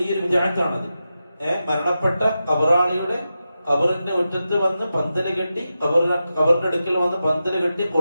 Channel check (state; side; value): inverted; both; correlation -0.90